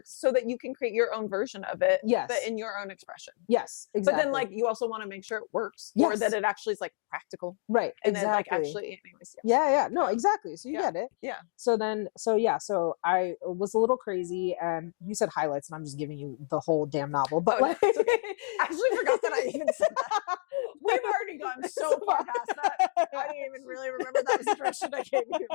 so that you can create your own version of it, but in your own expression. Yes, exactly. But then like, you also want to make sure it works or that it actually is like practical. Right. And then like actually, anyways. Yeah. No, exactly. So you get it. Yeah. So I was a little crazy, and you said highlights, and I'm just giving you the whole damn novel. But like, I actually forgot that I even said that. We've already gone so far past that. I didn't even really remember that was the direction I gave you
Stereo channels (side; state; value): right; silent; digital silence